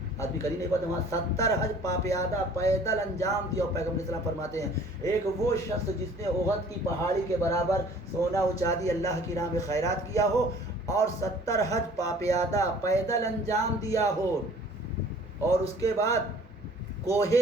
آدمی کر ہی نہیں پاتا، وہاں 70 حج پاپیادہ پیدل انجام دیا ہو۔ پیغمبر اسلام فرماتے ہیں ایک وہ شخص جس نے احد کی پہاڑی کے برابر سونا و چاندی اللہ کی راہ میں خیرات کیا ہو اور 70 حج پاپیادہ پیدل انجام دیا ہو، اور اس کے بعد کوہ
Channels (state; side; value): normal; both; correlation 0.51